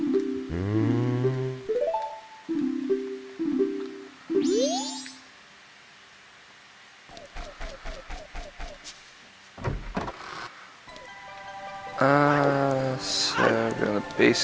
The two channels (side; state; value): both; identical; correlation 1.00